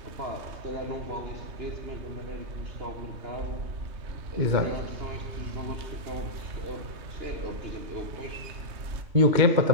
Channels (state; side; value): late; left; 3.2 ms